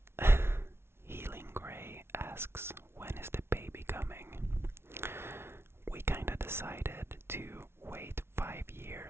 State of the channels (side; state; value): left; late; 0.12 ms